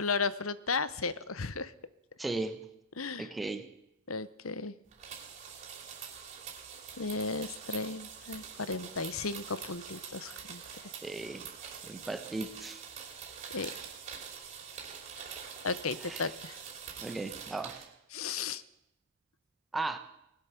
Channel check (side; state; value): both; normal; correlation 0.00